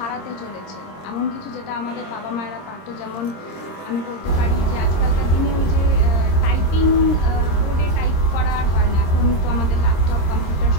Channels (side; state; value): right; late; 26 ms